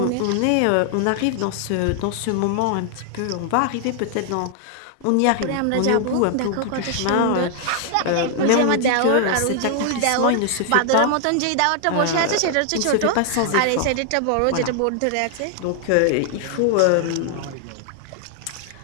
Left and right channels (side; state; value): both; different; correlation 0.00